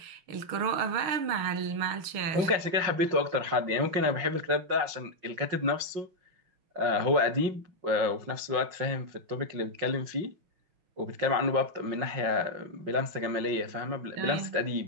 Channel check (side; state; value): left; late; 5.6 ms